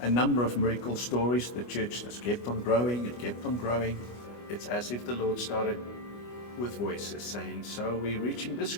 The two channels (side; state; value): right; late; 25 ms